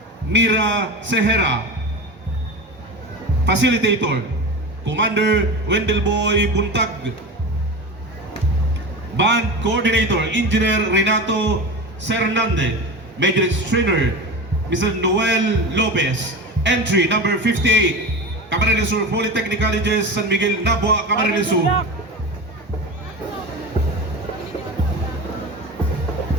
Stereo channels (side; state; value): both; normal; correlation 0.27